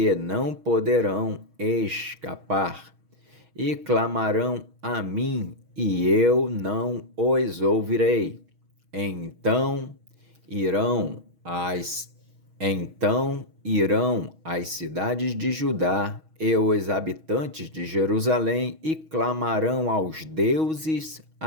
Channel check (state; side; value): late; left; 6.3 ms